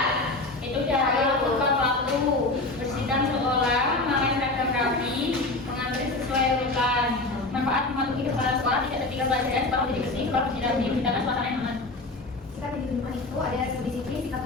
Itu cara melakukan waktu bersihkan sekolah, memakai seragam rapi, mengantri sesuai urutan. Manfaat mematuhi kepala sekolah tidak tertinggal pelajaran, sekolah menjadi bersih, sekolah menjadi rapi, menciptakan suasana yang aman. sikap di lingkungan itu ada disiplin, sikap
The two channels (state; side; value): quieter; right; 3.0 dB